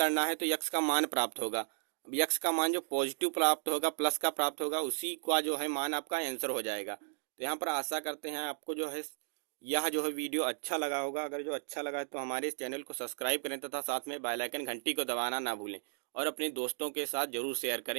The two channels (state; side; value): silent; left; 55 dB below the other